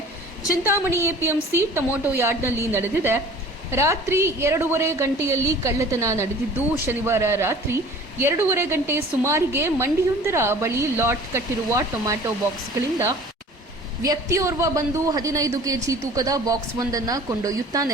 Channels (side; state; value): both; normal; correlation 0.46